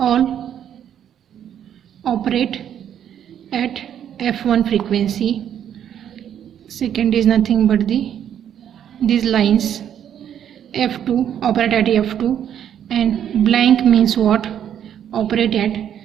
operate at f1 frequency. Second is nothing but these lines, f2 operate at f2, and blank means what? Operate at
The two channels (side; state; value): left; quieter; 9.6 dB